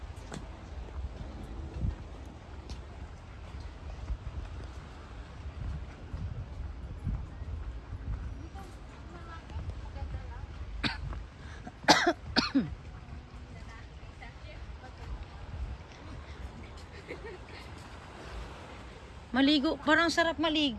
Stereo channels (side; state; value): both; identical; correlation 1.00